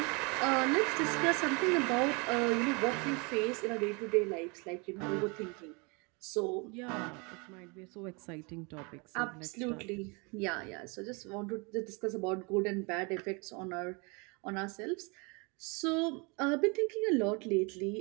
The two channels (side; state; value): left; quieter; 30.3 dB